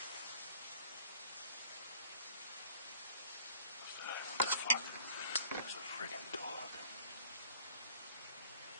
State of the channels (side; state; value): both; inverted; correlation -0.52